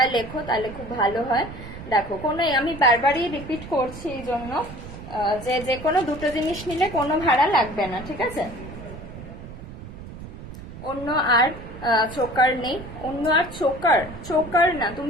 লেখো তাহলে খুব ভালো হয়। দেখো কোনো, আমি বারবারই রিপিট করছি এই জন্য, যে কোনো দুটো জিনিস নিলে কোনো ভাড়া লাগবে না, ঠিক আছে? অন্য আর চোকার নেই? অন্য আর চোকার না,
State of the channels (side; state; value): right; noise; rumble, 13 dB below the sound